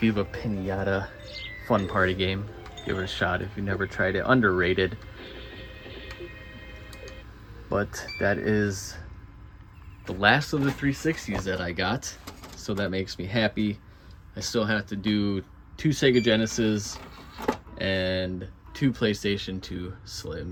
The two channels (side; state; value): both; identical; correlation 1.00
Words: Pinata, fun party game. Give it a shot if you never tried it. Underrated. But that is the last of the 360s that I got, so that makes me happy. I still have to do 2 Sega Genesis and 2 PlayStation 2